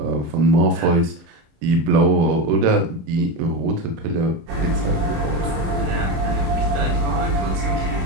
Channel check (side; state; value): left; late; 26 ms